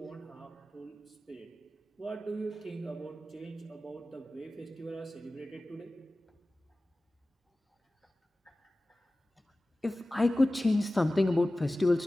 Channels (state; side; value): normal; both; correlation 0.96